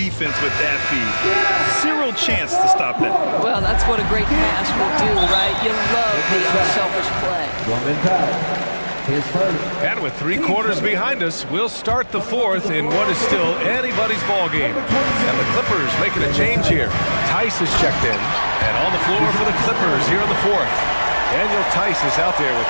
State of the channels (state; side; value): inverted; both; correlation -1.00